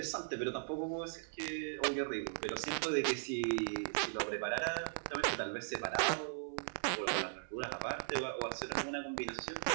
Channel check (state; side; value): silent; left; 52 dB below the other